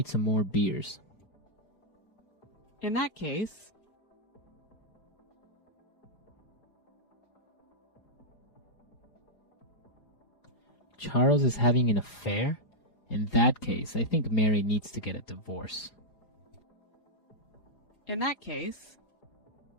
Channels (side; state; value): right; late; 4.8 ms